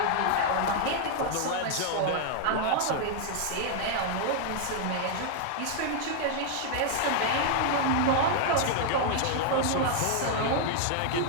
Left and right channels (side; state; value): both; different; correlation 0.00